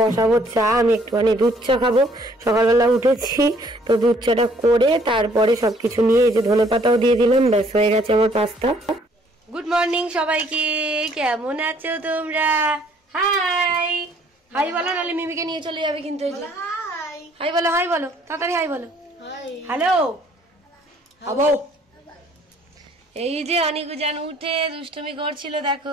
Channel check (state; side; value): normal; both; correlation 0.61